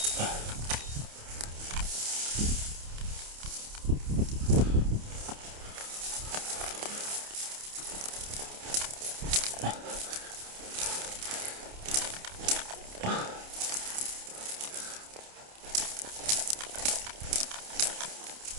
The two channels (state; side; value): late; left; 28 ms